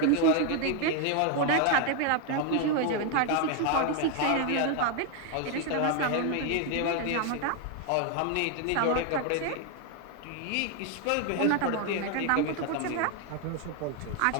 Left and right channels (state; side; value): different; both; correlation 0.01